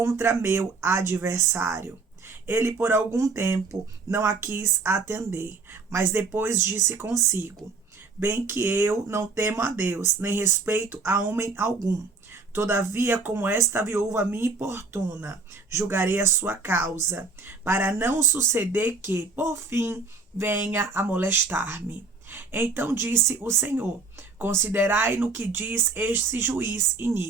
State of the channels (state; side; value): quieter; left; 4.2 dB